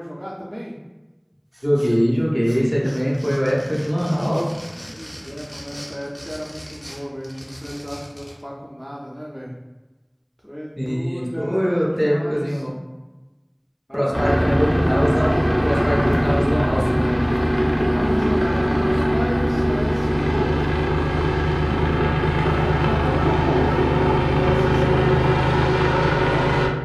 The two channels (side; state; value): both; identical; correlation 1.00